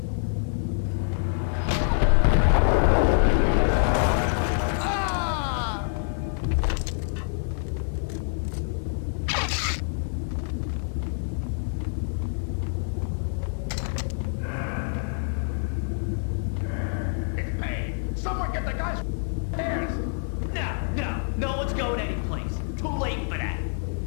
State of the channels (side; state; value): right; silent; 55 dB below the other